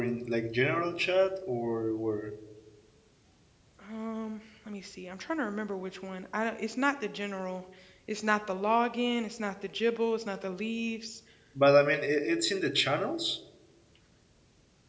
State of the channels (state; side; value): identical; both; correlation 1.00